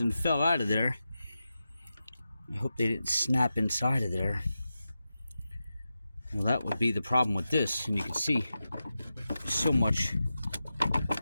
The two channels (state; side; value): inverted; both; correlation -0.91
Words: fell out of there. I hope they didn't snap inside of there. Well, that would be the problem with this, and you can see so much.